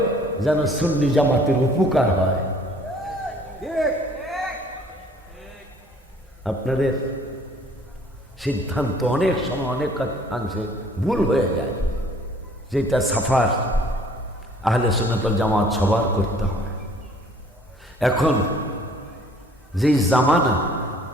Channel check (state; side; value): normal; both; correlation 0.56